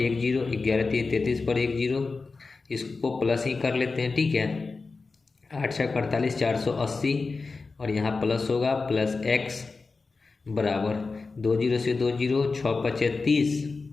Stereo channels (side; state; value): right; quieter; 4.1 dB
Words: 1 0, 11 3 33 पर 1 0, इसको प्लस ही कर लेते हैं, ठीक है। 8 6 48, 480 और यहाँ प्लस होगा प्लस x बराबर 2 0 से 2 0, 6 5 30